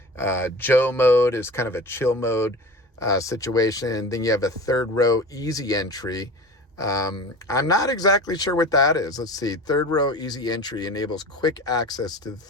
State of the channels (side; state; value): both; normal; correlation 0.34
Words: Joe mode is kind of a chill mode situation. Then you have a third row easy entry. I'm not exactly sure what that is. Let's see. Third row easy entry enables quick access to the